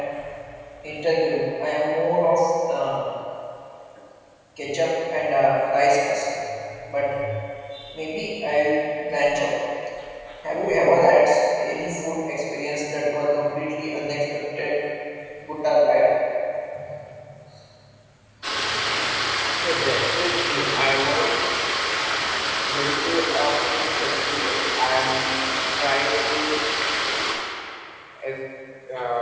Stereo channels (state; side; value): identical; both; correlation 1.00